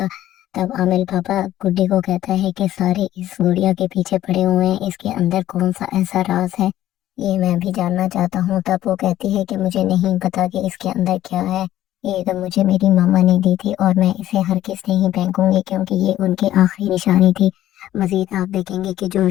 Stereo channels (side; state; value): right; quieter; 13.3 dB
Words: तब आमिल बाबा गुड्डी को कहता है कि सारे इस गुड़िया के पीछे पड़े हुए हैं, इसके अंदर कौन सा ऐसा राज है ये मैं भी जानना चाहता हूँ। तब वो कहती है कि मुझे नहीं पता कि इसके अंदर क्या है, ये तो मुझे मेरी मामा ने दी थी और मैं इसे हर किस नहीं फेंकूंगी क्योंकि ये उनकी आखिरी निशानी थी। मजीद आप देखेंगे कि जो